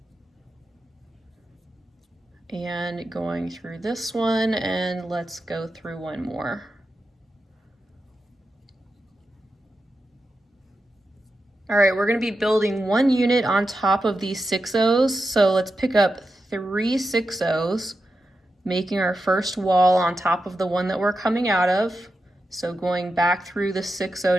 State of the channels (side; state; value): both; normal; correlation 0.89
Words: And going through this one, and let's go through one more. All right, we're going to be building one unit on top of these 6Os. So let's pick up 3 6Os, making our first wall on top of the one that we're coming out of. So going back through the 6O